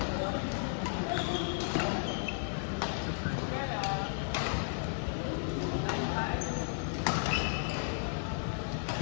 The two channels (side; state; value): right; silent; digital silence